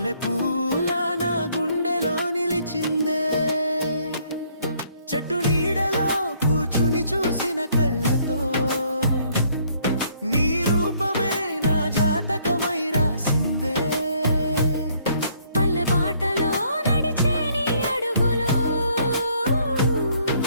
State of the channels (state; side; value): inverted; both; correlation -0.65